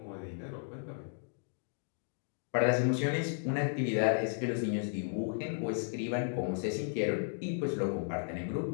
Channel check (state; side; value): silent; right; digital silence